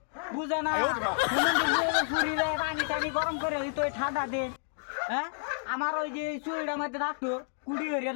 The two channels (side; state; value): right; silent; digital silence